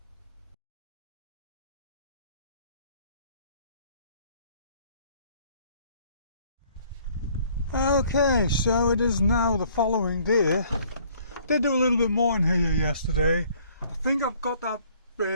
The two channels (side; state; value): both; inverted; correlation -0.59